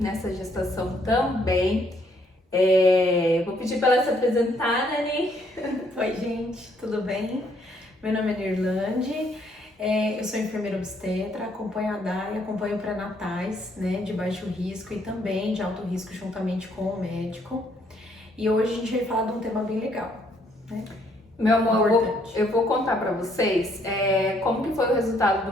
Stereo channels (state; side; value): normal; both; correlation 0.68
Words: nessa gestação também. Vou pedir pra ela se apresentar, né, Ani? Oi, gente, tudo bem? Meu nome é Nirlande, eu sou enfermeira obstetra, acompanho a Dai, acompanho pré-natais, né, de baixo risco e também de alto risco juntamente com o médico. E hoje a gente vai falar de um tema bem legal, né? Meu amor, Importante. eu vou contar pra vocês como que foi o resultado